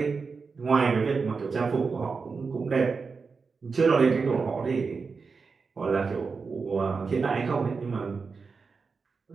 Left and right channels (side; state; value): left; quieter; 4.9 dB